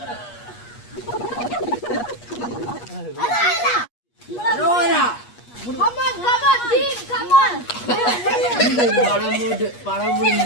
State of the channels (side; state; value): right; late; 8.3 ms